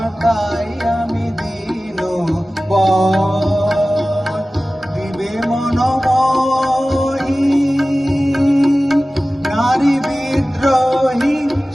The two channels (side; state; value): both; normal; correlation 0.96